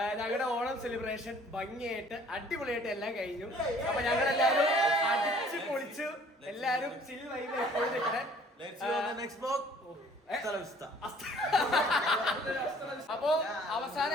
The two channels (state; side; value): normal; both; correlation 0.55